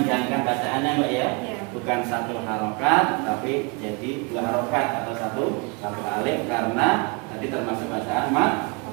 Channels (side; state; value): left; quieter; 31.5 dB